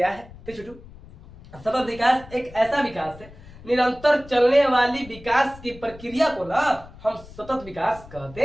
है। तो छोटू, सतत विकास एक ऐसा विकास है, निरंतर चलने वाली विकास की प्रक्रिया को ना हम सतत विकास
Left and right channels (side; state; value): left; noise; rumble, 19 dB below the sound